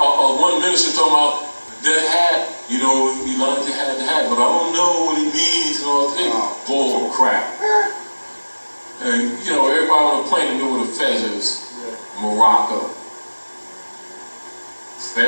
one minister talking about that hat. You know, Elijah had the hat, but I don't know what it means and all that. Bull crap. And, you know, everybody on the planet knew what a fez is. Morocco.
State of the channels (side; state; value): both; inverted; correlation -1.00